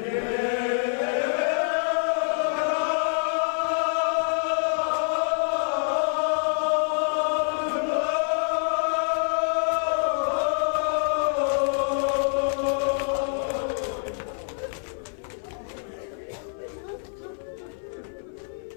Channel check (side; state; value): right; silent; 56 dB below the other